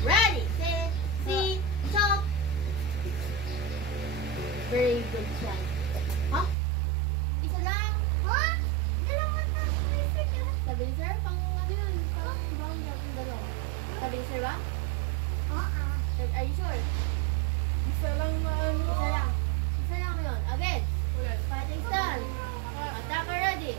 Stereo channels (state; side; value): drops out; left; at 6.6 s